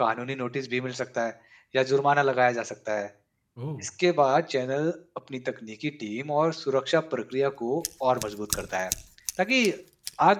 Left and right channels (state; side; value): identical; both; correlation 1.00